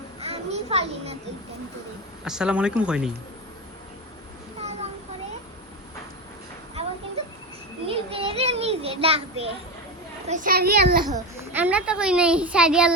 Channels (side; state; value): both; normal; correlation 0.19